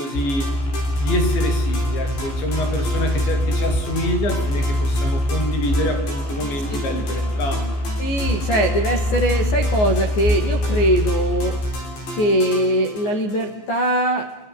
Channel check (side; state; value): right; late; 14 ms